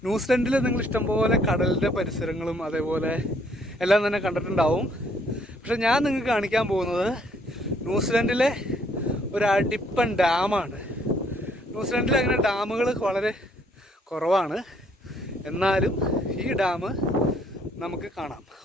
ന്യൂസിലൻഡിൽ നിങ്ങൾ ഇഷ്ടംപോലെ കടലിൻ്റെ പരിസരങ്ങളും അതേപോലെ എല്ലാം തന്നെ കണ്ടിട്ടുണ്ടാവും. പക്ഷെ ഞാൻ നിങ്ങൾക്ക് കാണിക്കാൻ പോകുന്നത് ന്യൂസിലൻഡിലെ ഒരു അടിപ്പൻ ഡാമാണ്. ന്യൂസിലൻഡിൽ അങ്ങനെ ഡാമുകൾ വളരെ കുറവാണ്, എന്നാലും ഈ ഡാം നമുക്ക് കാണാം.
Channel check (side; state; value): both; normal; correlation 0.66